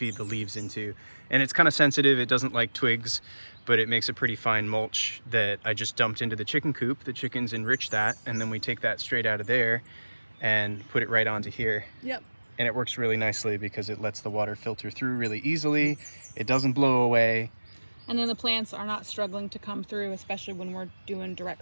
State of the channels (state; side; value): inverted; both; correlation -1.00